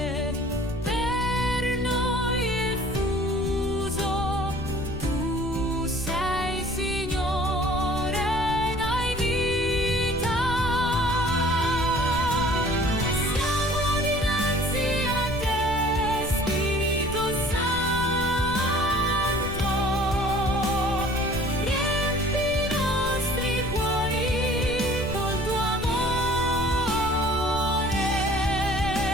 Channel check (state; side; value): noise; left; rumble, 10 dB below the sound